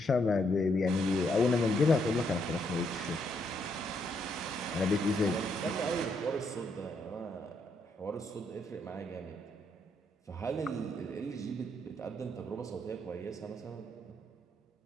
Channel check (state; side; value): normal; both; correlation 0.75